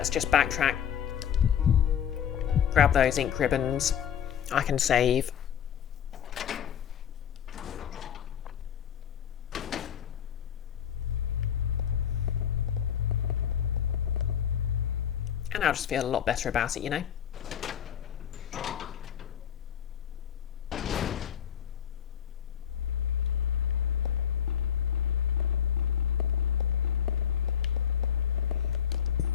just backtrack. Grab those ink ribbons. I can save. And I'll just feel a lot better about it, you know?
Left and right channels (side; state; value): right; quieter; 9.0 dB